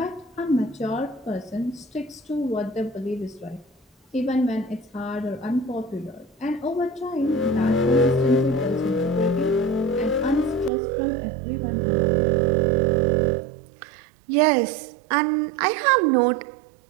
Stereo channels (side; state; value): left; drops out; at 10.7 s